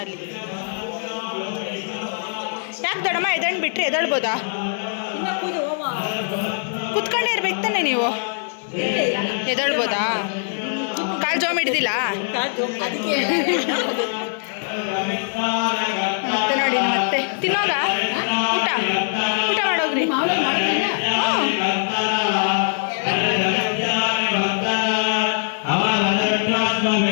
ಯಾಕೆ ದೊಡ್ಡಮ್ಮ ಎದಳ್ ಬಿಟ್ರಿ? ಎದಳ್ಬೋದಾ? ಕೂತ್ಕೊಂಡೇ ಇರ್ಬೇಕು ತಾನೆ ನೀವು. ಎದಳ್ಬೋದಾ? ಕಾಲು ಜೋಮ್ ಹಿಡ್ದಿಲ್ಲ ಮತ್ತೆ ನೋಡಿ. ಮತ್ತೆ ತಿನ್ನೋಗ ಊಟ ಮಾಡೋಗ್ರಿ.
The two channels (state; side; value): silent; right; digital silence